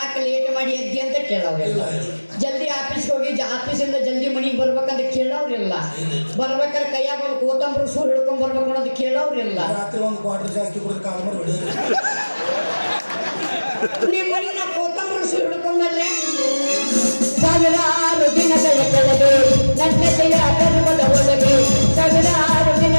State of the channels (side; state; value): both; inverted; correlation -1.00